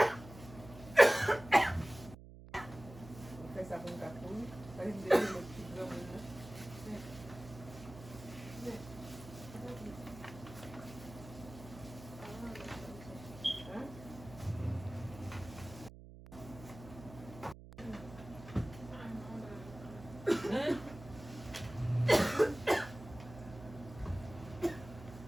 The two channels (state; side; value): noise; right; hum, 16 dB below the sound